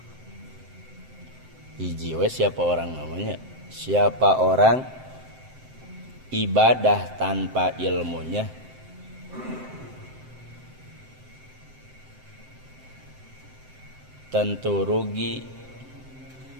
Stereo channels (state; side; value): late; left; 7.7 ms